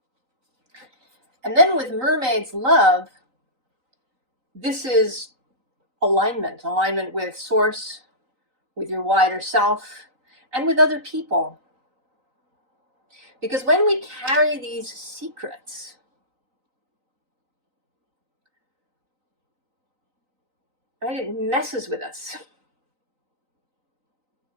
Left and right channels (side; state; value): left; late; 3.9 ms